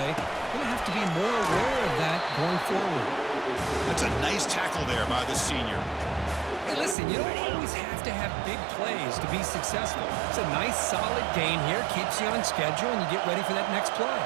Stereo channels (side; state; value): left; drops out; at 7.0 s